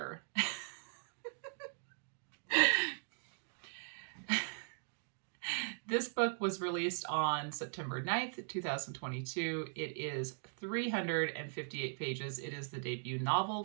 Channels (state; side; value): silent; left; digital silence